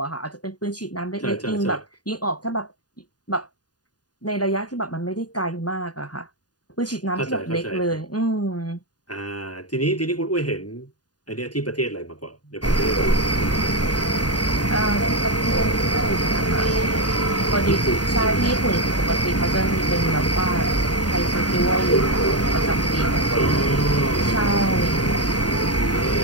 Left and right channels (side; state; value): right; late; 0.69 ms